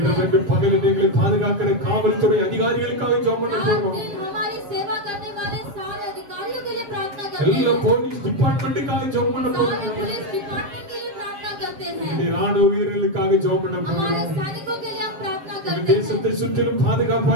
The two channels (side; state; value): left; late; 7.2 ms